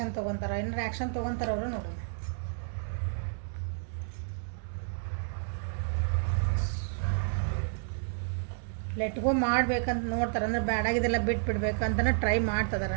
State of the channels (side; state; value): left; silent; 57 dB below the other